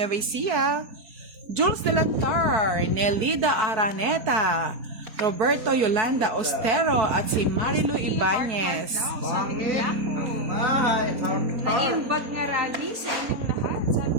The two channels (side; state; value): left; late; 4.2 ms